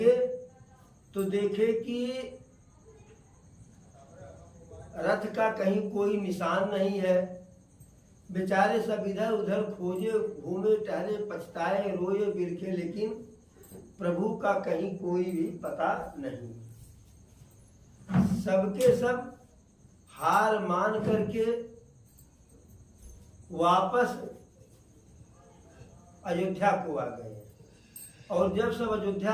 तो देखे कि रथ का कहीं कोई निशान नहीं है। बेचारे सब इधर उधर खोजे, घूमे टहले, पछताए, रोए बिरखे, लेकिन प्रभु का कहीं कोई भी पता नहीं। सबके सब हार मान करके वापस अयोध्या को आ गए। और जब सब अयोध्या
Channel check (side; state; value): both; identical; correlation 1.00